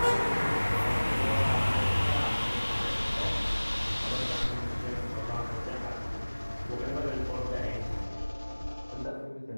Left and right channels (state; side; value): inverted; both; correlation -1.00